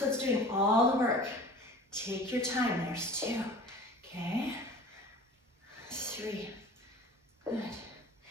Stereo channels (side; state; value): both; normal; correlation 0.42